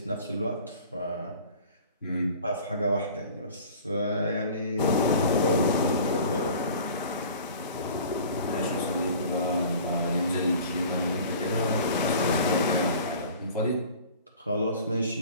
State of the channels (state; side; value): inverted; both; correlation -0.45